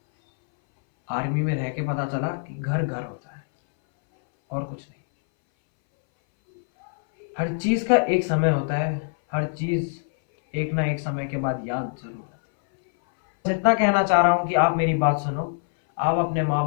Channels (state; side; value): silent; right; 63 dB below the other